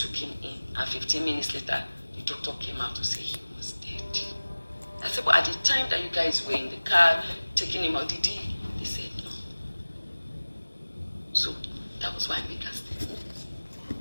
him in, and 15 minutes later, the doctor came out to say he was dead. said, but at the time that you guys were in the car taking him out, did he? They said no. So that was why I made that statement.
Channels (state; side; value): inverted; both; correlation -1.00